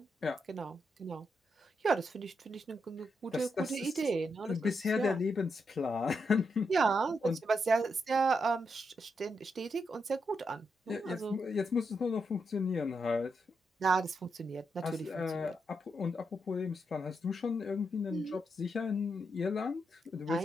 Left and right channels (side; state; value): both; normal; correlation 0.82